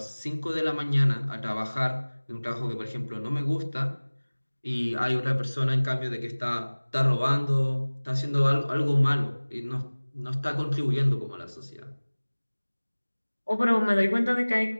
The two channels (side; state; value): both; inverted; correlation -1.00